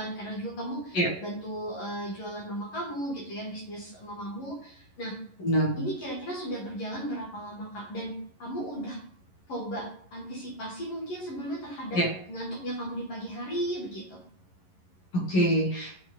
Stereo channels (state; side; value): late; right; 11 ms